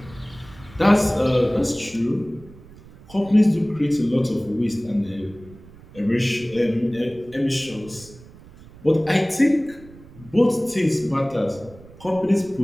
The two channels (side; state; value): right; noise; rumble, 21 dB below the sound